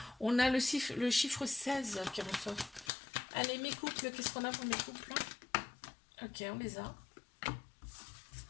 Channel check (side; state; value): right; drops out; at 2.9 s